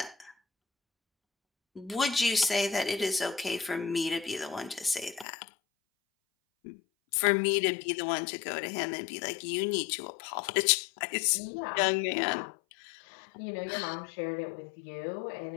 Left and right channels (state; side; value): drops out; right; at 5.2 s